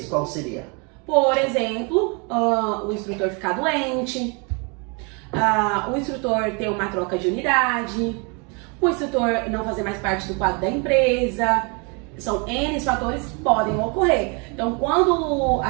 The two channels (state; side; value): quieter; left; 33.1 dB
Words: qual seria? Por exemplo, o instrutor ficar doente, o instrutor ter uma troca de unidade, o instrutor não fazer mais parte do quadro da empresa. São N fatores que podem ocorrer. Então, quando a